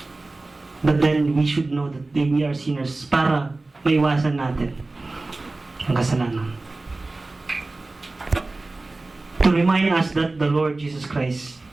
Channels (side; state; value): left; quieter; 3.2 dB